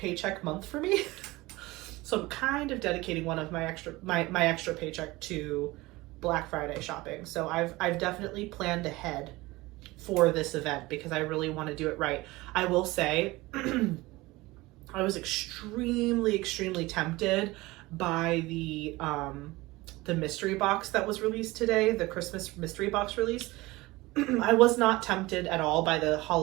month for me. So I'm kind of dedicating one of my extra paycheck to Black Friday shopping. So I've definitely planned ahead for this event because I really want to do it right. I will say I was extremely tempted by the mystery box that was released today, the Christmas mystery box release. I was not tempted at all by the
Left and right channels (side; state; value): left; quieter; 20.7 dB